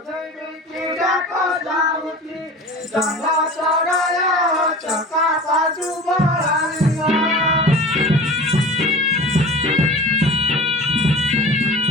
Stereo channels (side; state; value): both; normal; correlation 0.37